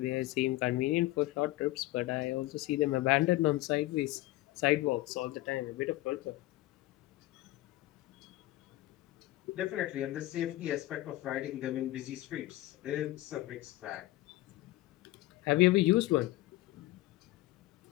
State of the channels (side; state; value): right; quieter; 17.4 dB